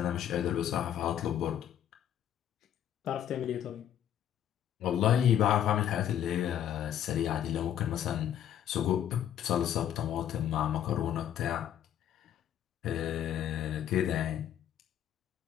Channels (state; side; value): quieter; right; 10.4 dB